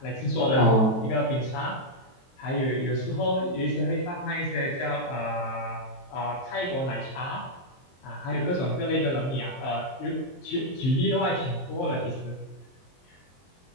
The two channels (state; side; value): late; right; 23 ms